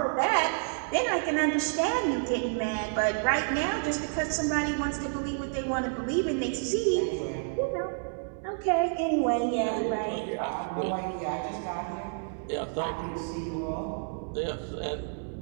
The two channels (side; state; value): left; silent; digital silence